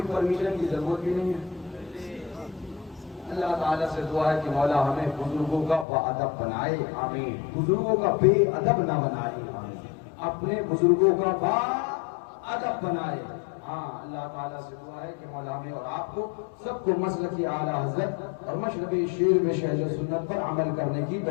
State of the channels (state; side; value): drops out; right; at 5.9 s